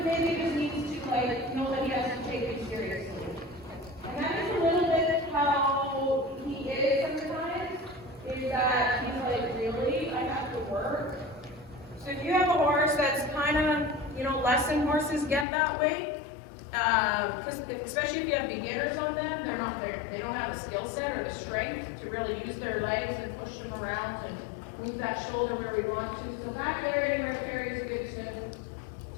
maybe just needs to know that he has to take it seriously. And that is a little bit how he is sometimes, is that he's like, really? I have to work? So if you have a horse that's kind of, lesson horses get that way, because especially if you have beginners on them, they don't have the skill set or the strength to really use their legs and push them around and move that shoulder where we want to. So back there, anywhere Carrie is good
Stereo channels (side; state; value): right; drops out; at 15.5 s